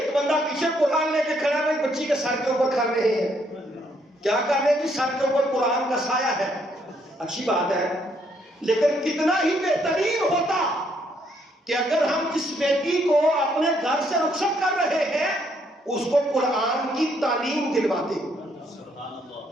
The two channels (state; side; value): normal; both; correlation 0.71